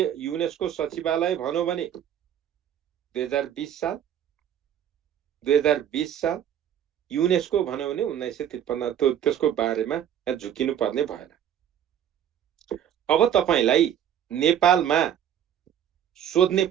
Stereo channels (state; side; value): quieter; left; 9.9 dB